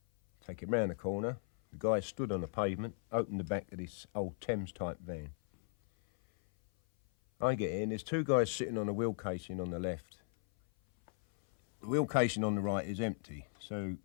take him round the corner. The guy stood on the pavement, opened the back of this old Thames-type van. I get in, there's two guys sitting on a wheel casing on the left. The wheel casing on the right is empty, so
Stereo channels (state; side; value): silent; right; 53 dB below the other